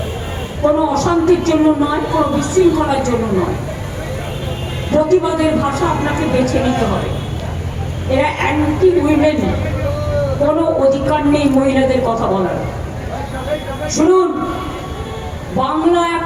কোনো অশান্তির জন্য নয়, কোনো বিশৃঙ্খলার জন্য নয়। প্রতিবাদের ভাষা আপনাকে বেছে নিতে হবে। এরা অ্যান্টি উইমেন, কোনো অধিকার নেই মহিলাদের কথা বলার। শুনুন, বাংলা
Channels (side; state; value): both; identical; correlation 1.00